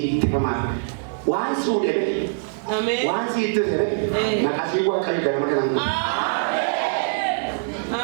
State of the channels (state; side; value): silent; left; digital silence